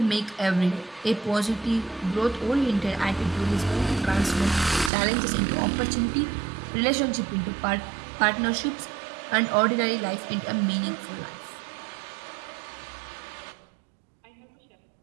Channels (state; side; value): drops out; left; at 4.9 s